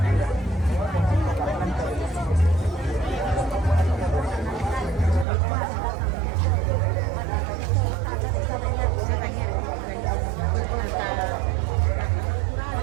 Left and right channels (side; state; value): left; drops out; at 5.2 s